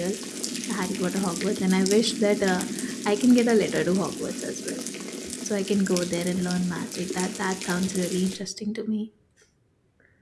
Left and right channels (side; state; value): both; identical; correlation 1.00